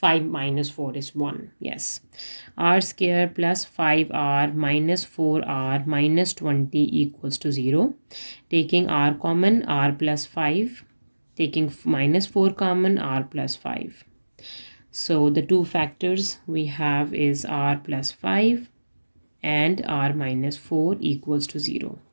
minus 4 is 1. Yes. R square plus 5r minus 4r minus 20 equals to 0. Taking r common, r plus 5. Taking minus 4 common, r plus 5. So the two factors we have is r plus 5 and r minus 4 equals to 0.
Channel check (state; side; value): inverted; both; correlation -1.00